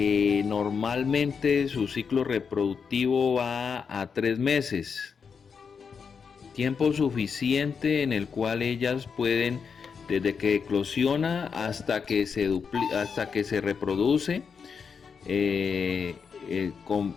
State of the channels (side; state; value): right; quieter; 6.1 dB